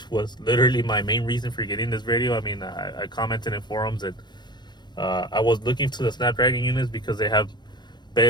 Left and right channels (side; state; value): right; late; 0.21 ms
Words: was literally my main reason for getting this radio. I mean, I commented in forums that I was looking to the Snapdragon units because they have